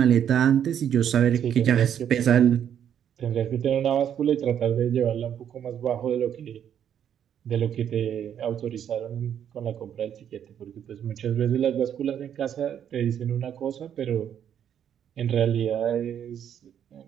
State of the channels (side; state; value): left; quieter; 9.2 dB